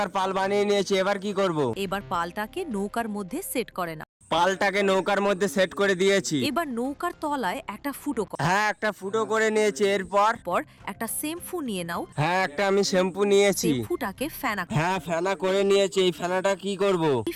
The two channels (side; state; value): both; identical; correlation 1.00